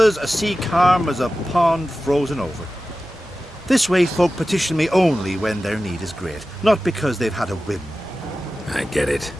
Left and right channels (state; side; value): normal; both; correlation 0.95